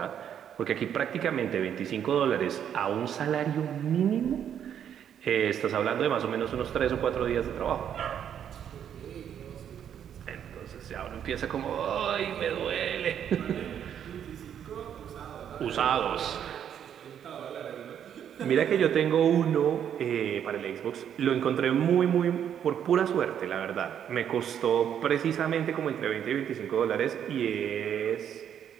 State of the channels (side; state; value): left; quieter; 9.1 dB